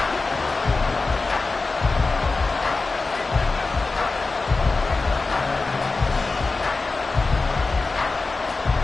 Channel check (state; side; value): quieter; right; 3.8 dB